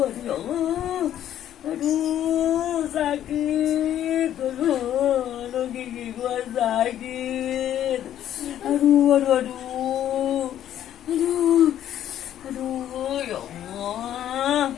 Aduh ya Allah, aduh sakit. Aduh gigi gua sakit. Aduh, ya Allah.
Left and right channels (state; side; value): quieter; right; 11.2 dB